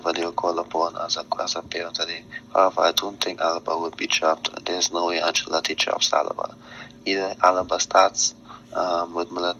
they were called upon as a pair today. However, I don't think Alaba would be chopped. There's no way Ancelotti chops Alaba. Either Alaba starts with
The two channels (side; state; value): both; identical; correlation 1.00